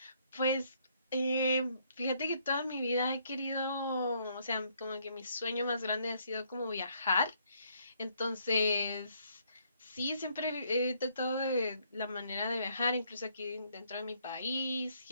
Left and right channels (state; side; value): inverted; both; correlation -0.69